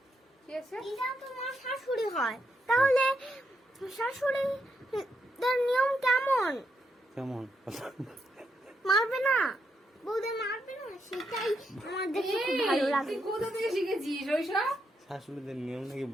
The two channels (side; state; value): both; normal; correlation 0.80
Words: কি আছে? দিদা তো মার শাশুড়ি হয়, তাহলে শাশুড়িদের নিয়ম কেমন? কেমন? মারবে না, বৌদের মারবে না, সেটাই আমার দেখতে খুব ভালো এই, লাগে। তুই কোথা থেকে শিখেছিস ওইসব? শাশুড়িদের নিয়ম নাকি